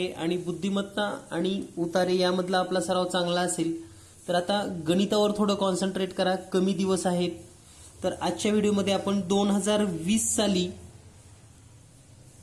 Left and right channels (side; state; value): both; identical; correlation 1.00